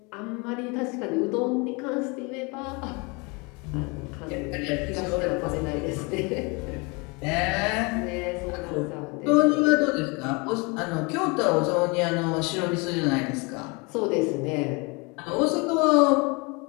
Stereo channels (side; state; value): right; quieter; 29.1 dB